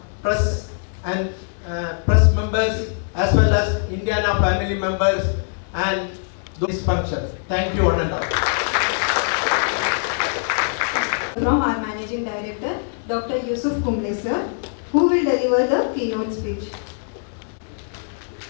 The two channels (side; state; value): right; silent; digital silence